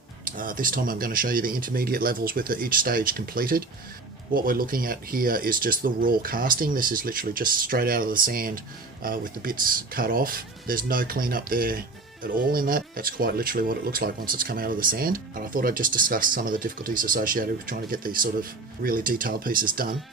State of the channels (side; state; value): left; quieter; 3.5 dB